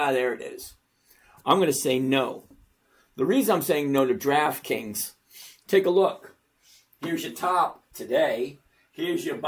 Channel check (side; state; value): both; identical; correlation 1.00